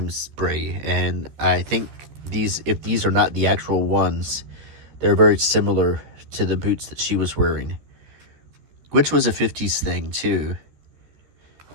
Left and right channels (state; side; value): late; left; 14 ms